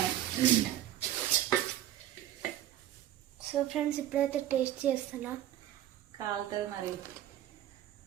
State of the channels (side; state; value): left; quieter; 12.5 dB